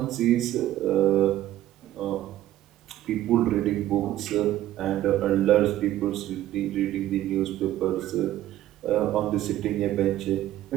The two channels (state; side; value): quieter; left; 13.7 dB